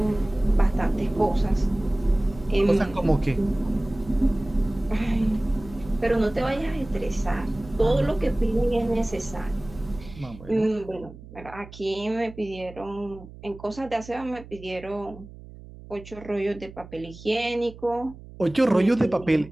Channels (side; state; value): right; noise; hum, 17 dB below the sound